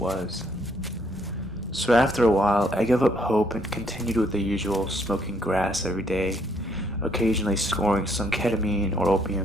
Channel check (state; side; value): normal; both; correlation 0.69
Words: So after a while, I gave up hope and continued with the usual, smoking grass every day, occasionally scoring some ketamine or